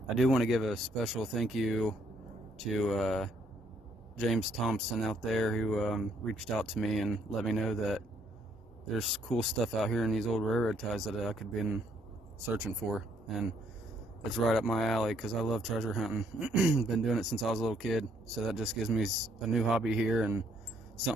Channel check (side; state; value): both; normal; correlation 0.68